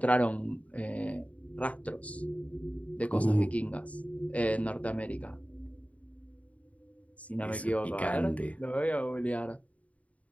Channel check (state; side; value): late; right; 0.067 ms